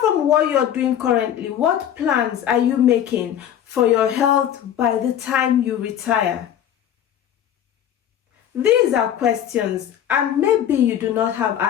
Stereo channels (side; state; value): right; quieter; 10.2 dB